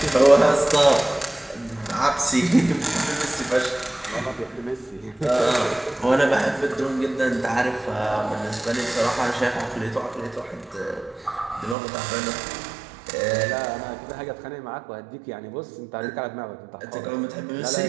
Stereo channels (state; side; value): drops out; left; at 11.8 s